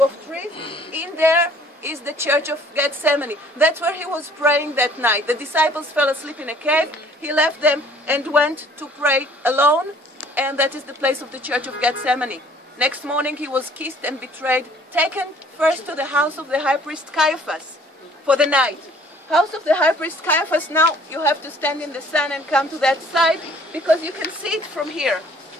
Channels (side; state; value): both; normal; correlation 0.55